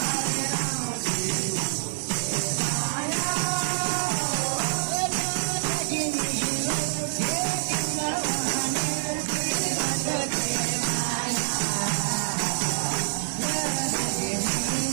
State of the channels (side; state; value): left; silent; 56 dB below the other